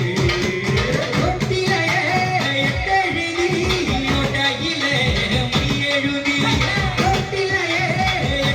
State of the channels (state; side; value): identical; both; correlation 1.00